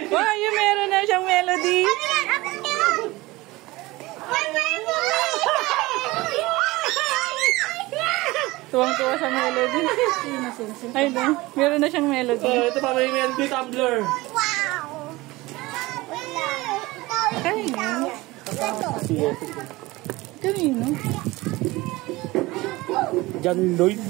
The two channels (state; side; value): quieter; left; 20.6 dB